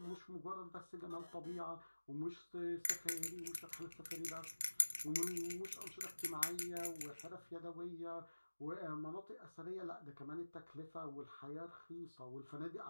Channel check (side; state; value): both; inverted; correlation -1.00